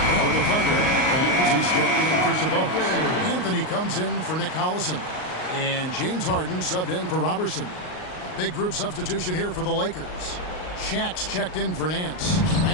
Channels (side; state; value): right; late; 38 ms